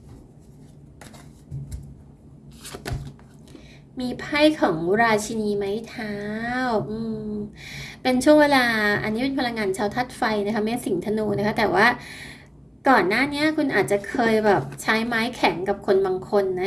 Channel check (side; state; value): both; identical; correlation 1.00